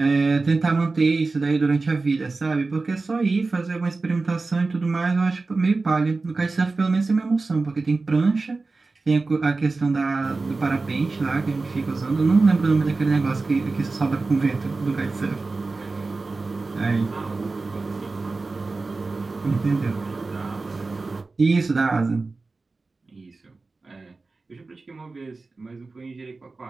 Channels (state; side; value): quieter; left; 3.7 dB